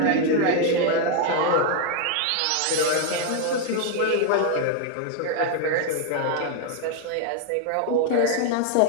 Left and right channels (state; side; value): different; both; correlation 0.01